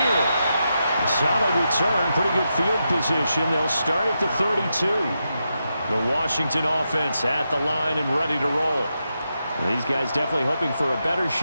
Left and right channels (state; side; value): inverted; both; correlation -0.86